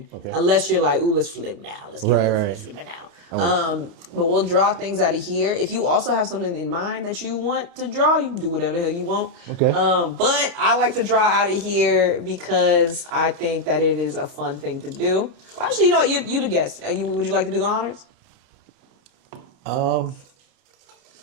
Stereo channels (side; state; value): left; late; 29 ms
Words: Okay. Unless you're like, ooh, let's flip now. Let's flip it now. But we'll draw things out of here. If you also have something in mind that you want to draw, you can do whatever the hell you want. Okay. But I like to draw out of here because I think that it is a fun thing to do. Well, actually, you know what? You the guest. Would you like to do the honors?